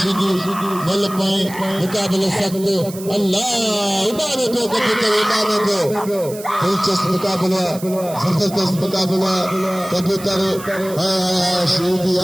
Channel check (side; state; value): right; noise; hiss, 15 dB below the sound